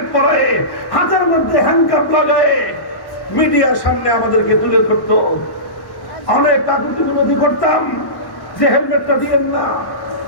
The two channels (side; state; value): right; late; 1.1 ms